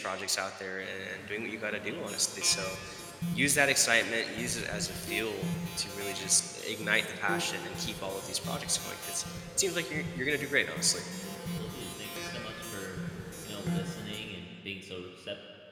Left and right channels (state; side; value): identical; both; correlation 1.00